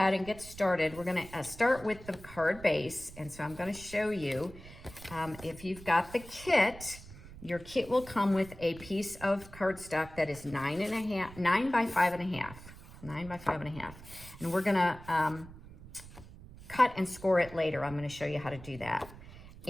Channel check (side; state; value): right; noise; rumble, 17 dB below the sound